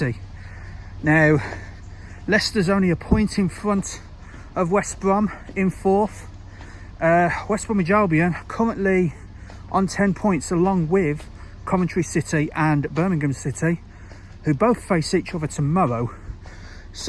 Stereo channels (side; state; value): both; identical; correlation 1.00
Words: Now, Leicester's only a point in front of West Brom in fourth. West Bromwich Albion currently on 10 points, along with Coventry City and Birmingham City, who both face each other tomorrow.